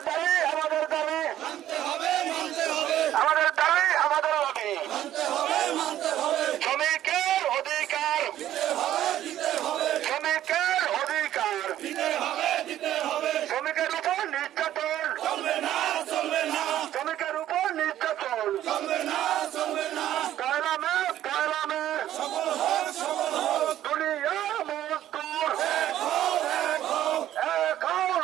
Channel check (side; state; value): left; quieter; 12.4 dB